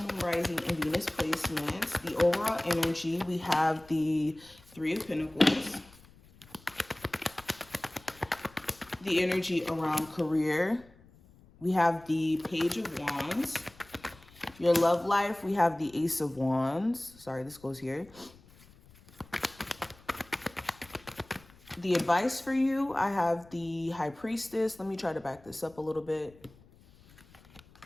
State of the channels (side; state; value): left; noise; rumble, 25 dB below the sound